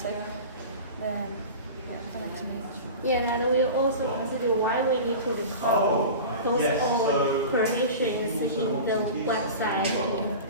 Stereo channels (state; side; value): inverted; both; correlation -0.33